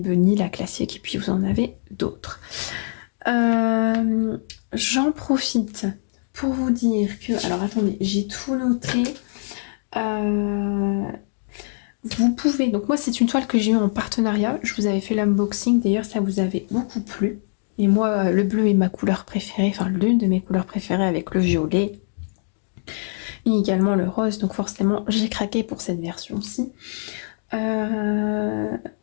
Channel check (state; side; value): silent; right; digital silence